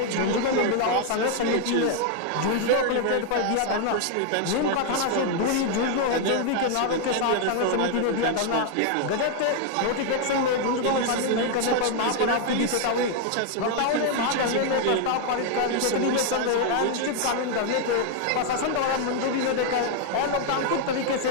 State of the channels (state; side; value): different; both; correlation 0.00